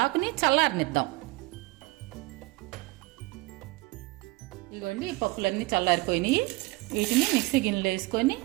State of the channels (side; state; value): left; quieter; 22.1 dB